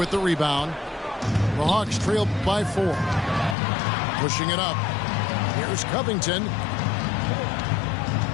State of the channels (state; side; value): drops out; right; at 3.6 s